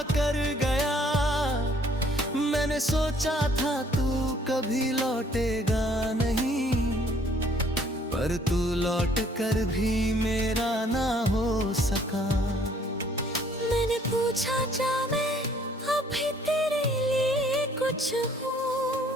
कर गया। मैंने सोचा था तू कभी लौटेगा नहीं, पर तू लौट कर भी मेरा ना हो सका। मैंने पूछा क्या मैं अभी तेरे लिए कुछ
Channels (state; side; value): normal; both; correlation 0.61